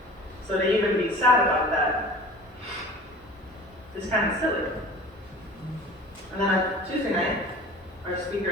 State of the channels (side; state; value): both; normal; correlation 0.41